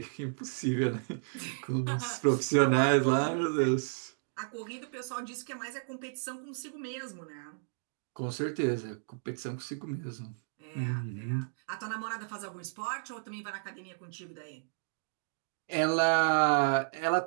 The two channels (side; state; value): left; silent; digital silence